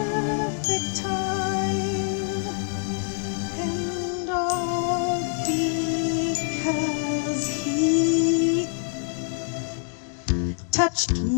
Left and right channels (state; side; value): silent; right; 61 dB below the other